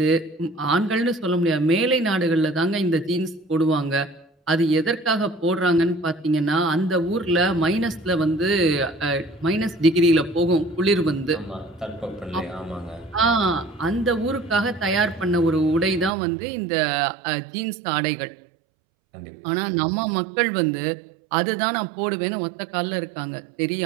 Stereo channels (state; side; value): drops out; left; at 16.1 s